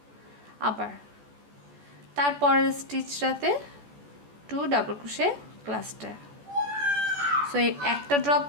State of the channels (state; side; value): late; left; 14 ms